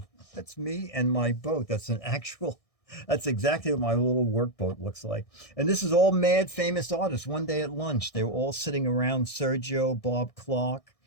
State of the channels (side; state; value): right; late; 1.6 ms